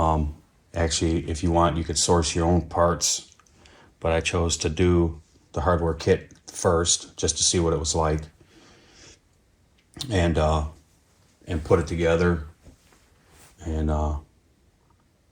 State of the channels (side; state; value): both; identical; correlation 1.00